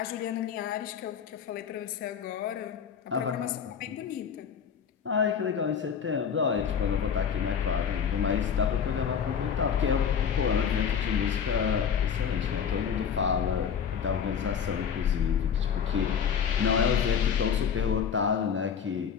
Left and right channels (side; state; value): right; quieter; 7.3 dB